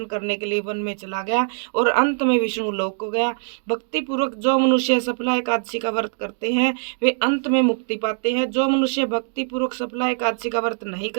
करने के लिए वन में चला गया और अंत में विष्णु लोक को गया। भक्ति पूर्वक जो मनुष्य सफला एकादशी का व्रत करते हैं वे अंत में मुक्ति पाते हैं। जो मनुष्य भक्ति पूर्वक सफला एकादशी का व्रत नहीं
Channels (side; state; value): left; silent; 64 dB below the other